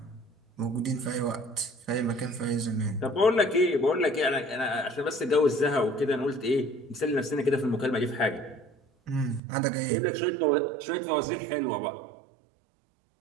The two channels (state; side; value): drops out; left; at 9.4 s